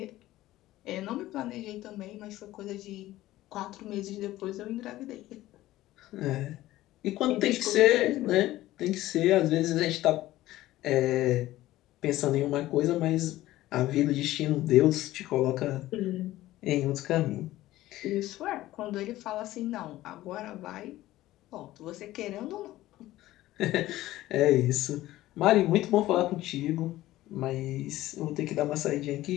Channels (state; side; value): quieter; right; 15.8 dB